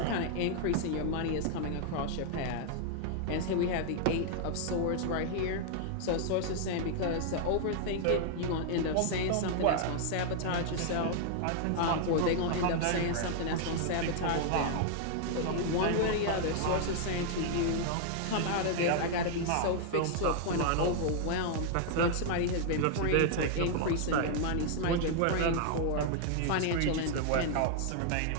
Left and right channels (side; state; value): both; different; correlation -0.01